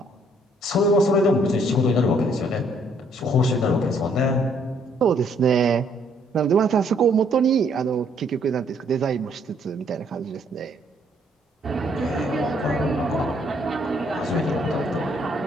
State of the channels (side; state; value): both; normal; correlation 0.66